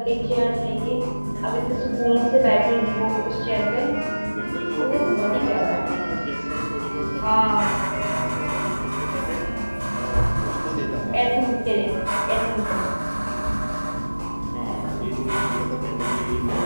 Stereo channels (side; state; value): both; inverted; correlation -1.00